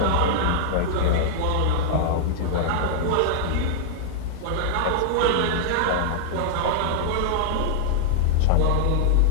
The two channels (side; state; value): both; different; correlation -0.01